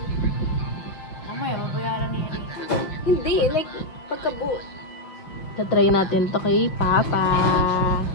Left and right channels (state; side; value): late; right; 6.3 ms